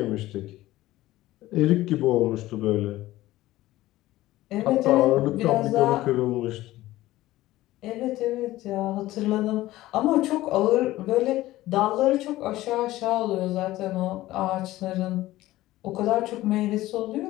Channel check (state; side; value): quieter; right; 16.5 dB